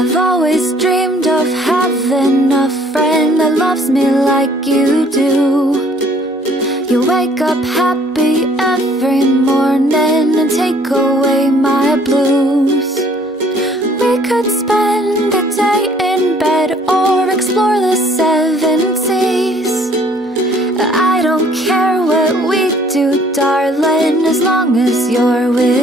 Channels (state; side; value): normal; both; correlation 0.59